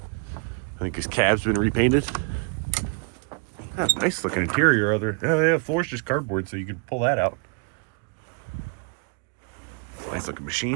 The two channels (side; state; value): left; quieter; 35.3 dB